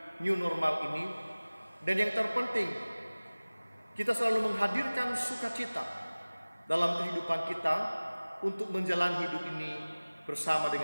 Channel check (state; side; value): inverted; both; correlation -0.99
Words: new normal ini. Dan yang terpenting, kita selalu menghadirkan sukacita dalam kehidupan kita untuk menjalani hidup ini bersama